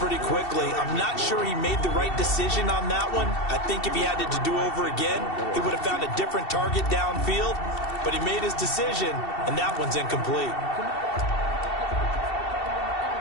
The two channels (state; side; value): late; right; 2.7 ms